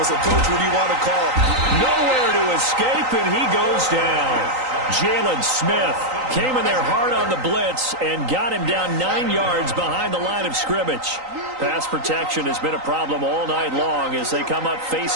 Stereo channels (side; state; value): left; late; 3.9 ms